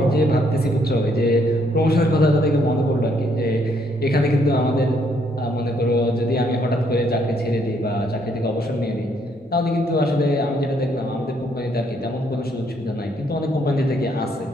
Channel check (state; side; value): normal; both; correlation 0.70